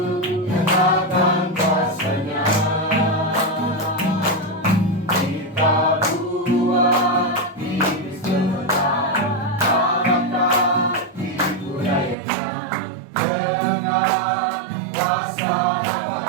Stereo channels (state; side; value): drops out; left; at 12.2 s